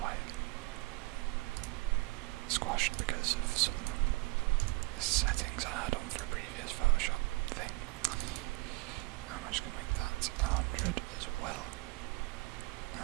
squashed because of some settings I had on for a previous Photoshop thing. I'm just going to make that 100 as well.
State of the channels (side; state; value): left; quieter; 23.9 dB